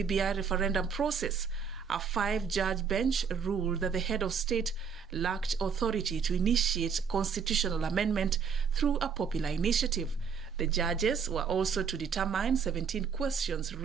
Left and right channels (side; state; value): left; quieter; 6.4 dB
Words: referendum process. A 5-judge bench ruled that the head of state lacked authority to initiate constitutional amendment through a popular initiative. The judges were also to determine 17 questions